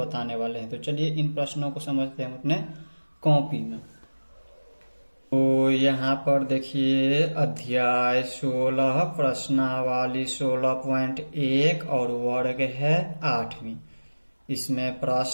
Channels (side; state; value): both; inverted; correlation -1.00